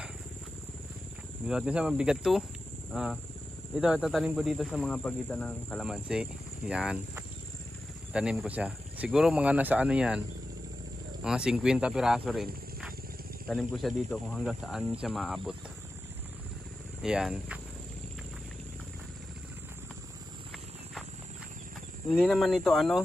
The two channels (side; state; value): both; normal; correlation 0.92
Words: Binuhat ko siya, mabigat to. Ito, tatanim ko dito sa mga pagitan ng kalamansi. Yan. Tanim ko siya. Siguro mga nasa ano yan. Mga 50 piraso rin. Tanim ko siya dito kung hanggang saan siya maabot. Yan. Hindi naman ito ano.